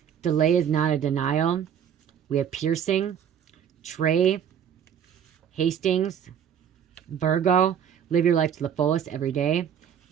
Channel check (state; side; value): quieter; left; 8.7 dB